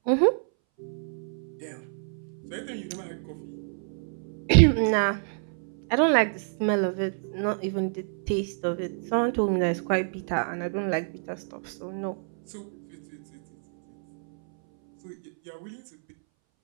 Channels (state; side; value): silent; left; 59 dB below the other